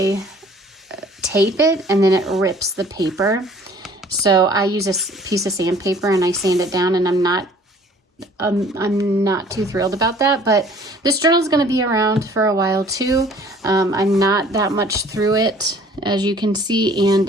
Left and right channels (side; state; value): both; normal; correlation 0.53